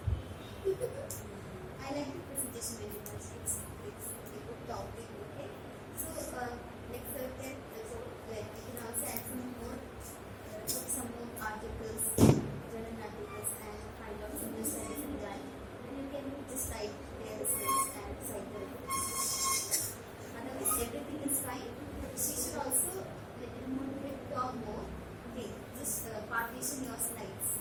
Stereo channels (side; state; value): both; identical; correlation 1.00